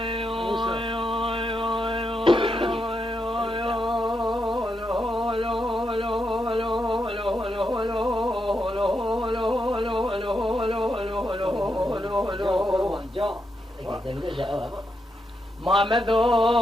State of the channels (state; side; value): normal; both; correlation 0.83